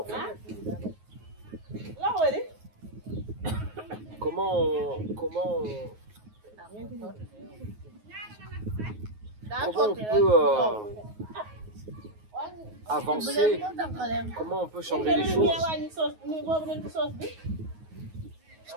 fait? Comment on peut avancer? Comment on peut changer les choses? Parce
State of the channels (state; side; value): late; left; 9.4 ms